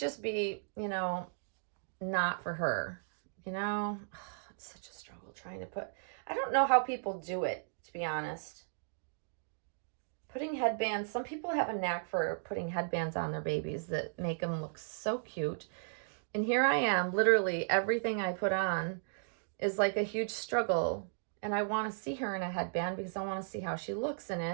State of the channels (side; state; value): left; silent; digital silence